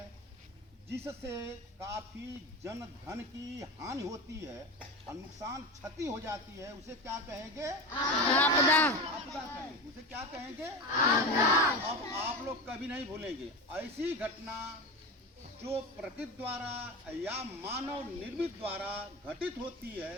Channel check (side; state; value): both; normal; correlation 0.24